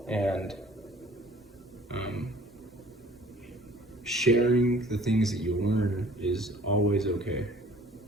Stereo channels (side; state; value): both; normal; correlation 0.54